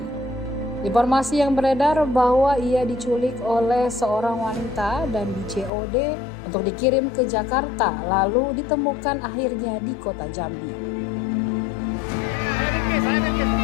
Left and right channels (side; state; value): right; drops out; at 5.7 s